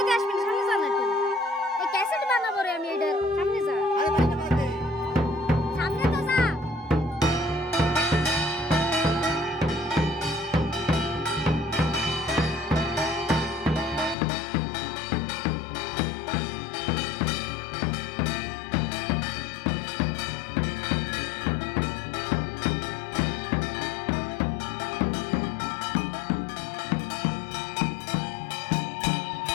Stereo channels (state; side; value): drops out; right; at 14.2 s